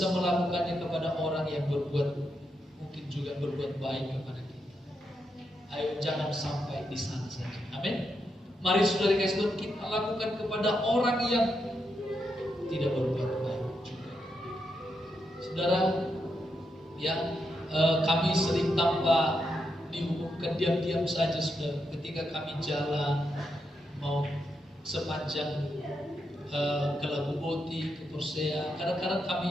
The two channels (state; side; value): normal; both; correlation 0.83